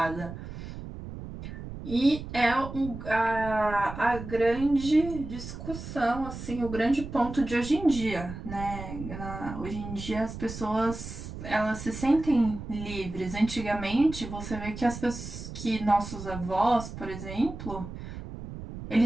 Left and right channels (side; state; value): right; noise; rumble, 10 dB below the sound